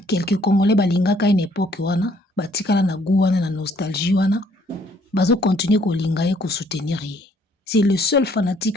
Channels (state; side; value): normal; both; correlation 0.64